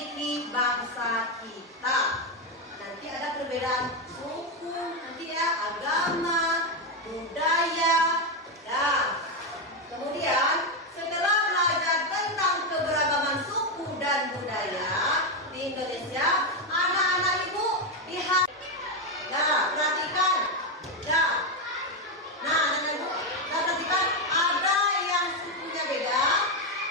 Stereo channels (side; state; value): both; normal; correlation 0.07